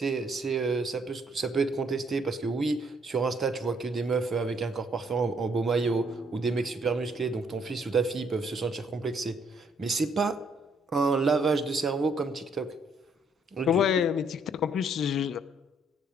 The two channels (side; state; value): both; normal; correlation 0.68